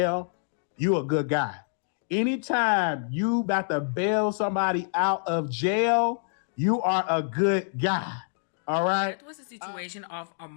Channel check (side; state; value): right; silent; digital silence